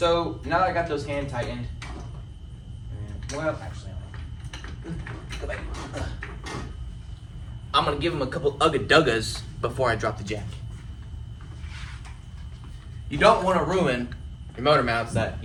now that I got those hand tightened, well, actually, go back. I'm gonna give him a couple ugga-duggas before I drop the jack. You don't want to ruin your motor mounts that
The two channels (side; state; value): both; identical; correlation 1.00